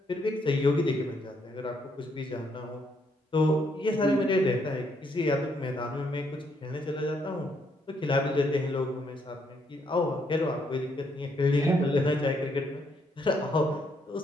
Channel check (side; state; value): both; normal; correlation 0.73